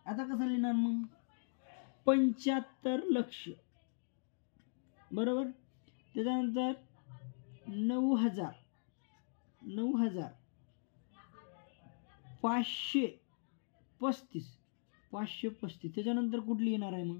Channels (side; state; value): right; silent; digital silence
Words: आता कसं लिहिणार मग 75 लक्ष बरोबर त्याच्यानंतर 535 त्याच्यानंतर कुठली येणार आहे मग